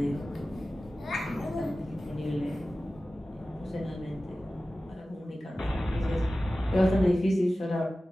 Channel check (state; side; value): normal; both; correlation 0.96